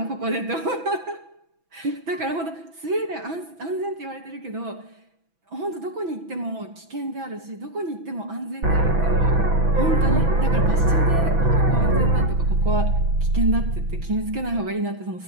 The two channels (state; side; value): late; left; 6.0 ms